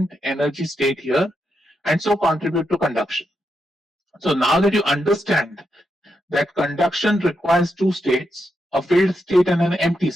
energy state here, and so contribute to conduction. So now that you understand that conduction requires two states, a filled state and an empty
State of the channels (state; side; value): normal; both; correlation 0.83